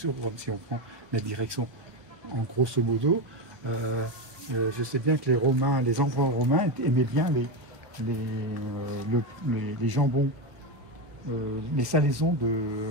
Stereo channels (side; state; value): left; late; 1.3 ms